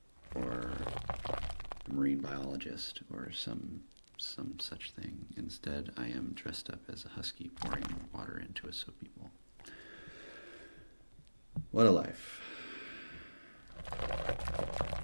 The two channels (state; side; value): inverted; both; correlation -1.00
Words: or a marine biologist or some such thing. Instead, I am dressed up as a husky pouring water into a soapy bowl. What a life.